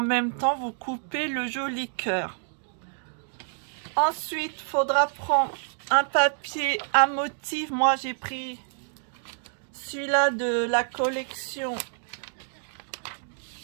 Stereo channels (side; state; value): left; silent; digital silence